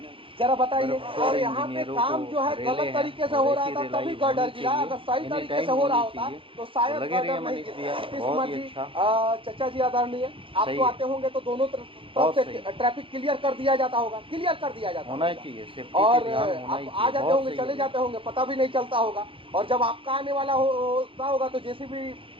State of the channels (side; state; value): left; late; 0.25 ms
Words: जरा बताइए। और यहाँ पे काम जो है गलत तरीके से हो रहा था तभी गर्डर गिरा, अगर सही तरीके से हो रहा होता तो शायद गर्डर नहीं गिरता। नीतीश कुमार जी, चचा जी आदरणीय, आप तो आते होंगे तो दोनों तरफ से ट्रैफिक क्लियर कर दिया जाता होगा, क्लियर कर दिया जाता होना चाहिए, और आप आ जाते होंगे चले जाते होंगे, पता भी नहीं चलता होगा, और जब आपका आने वाला होता होगा तो जेसीबी